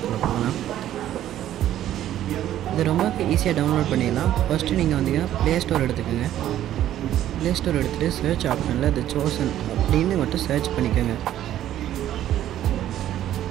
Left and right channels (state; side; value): quieter; left; 12.2 dB